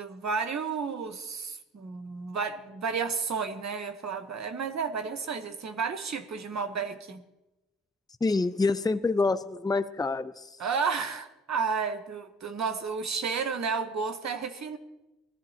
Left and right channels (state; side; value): normal; both; correlation 0.47